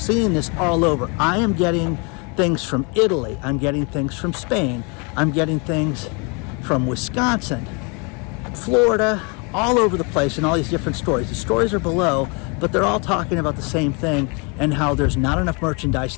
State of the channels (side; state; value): right; quieter; 32.8 dB